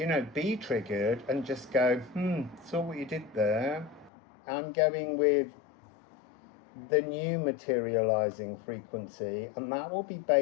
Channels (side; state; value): right; drops out; at 4.1 s